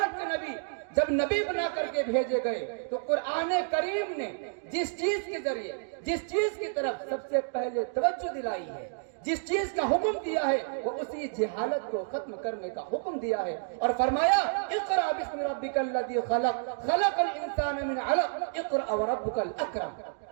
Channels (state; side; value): silent; left; digital silence